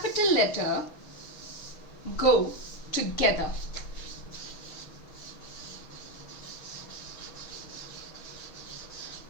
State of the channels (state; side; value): late; right; 6.4 ms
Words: letter go together.